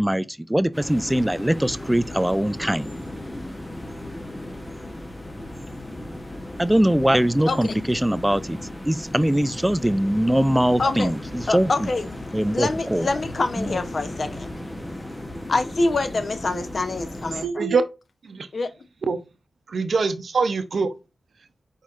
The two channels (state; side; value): normal; both; correlation 0.96